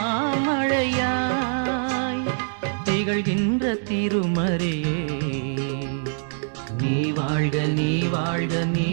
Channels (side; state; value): left; silent; digital silence